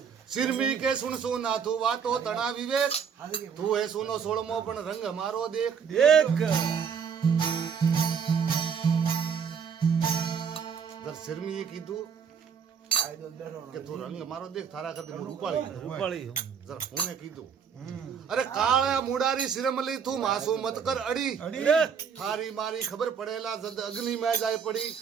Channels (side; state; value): left; quieter; 6.8 dB